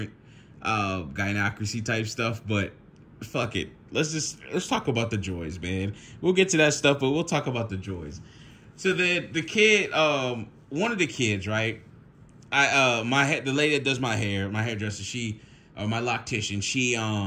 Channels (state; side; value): identical; both; correlation 1.00